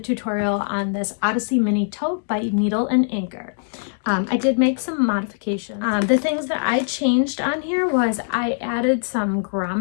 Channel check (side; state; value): right; silent; digital silence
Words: on this Odyssey mini tote by Needle and Inker. I did make some modifications. The things that I changed on here was I added some